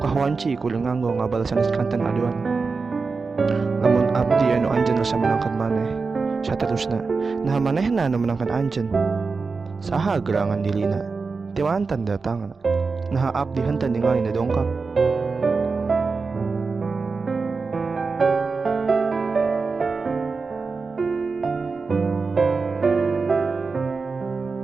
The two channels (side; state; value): left; quieter; 4.5 dB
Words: kudu nganggo ngabal sanes kanten aduan. Lamun abdi anu anjeun rasa menangkan maneh, saterusna nah manehna anu menangkan anjeun. Saha gerangan dilina, ti mantan datangna. Nah abdi henteu ningali na dongkap.